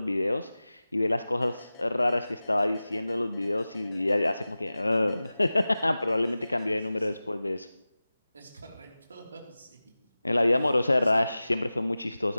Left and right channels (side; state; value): both; inverted; correlation -0.97